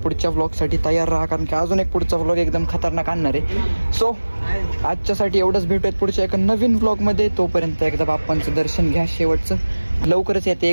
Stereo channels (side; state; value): both; inverted; correlation -1.00